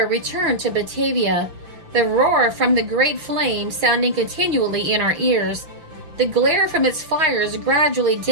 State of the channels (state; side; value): late; left; 5.9 ms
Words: returned to Batavia, the roar from the great flame sounding continually in our ears, the glare from its fires gradually